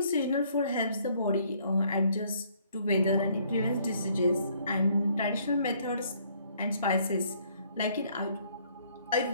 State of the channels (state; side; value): inverted; both; correlation -0.64